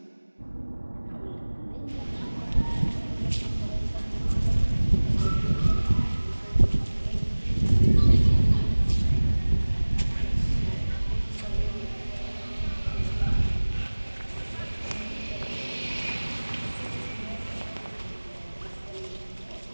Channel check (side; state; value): both; inverted; correlation -1.00